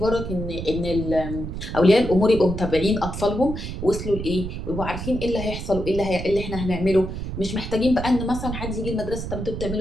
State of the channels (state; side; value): noise; right; rumble, 6 dB below the sound